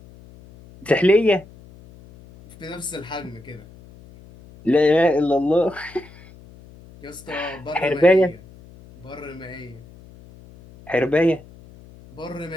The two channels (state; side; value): noise; left; hum, 22 dB below the sound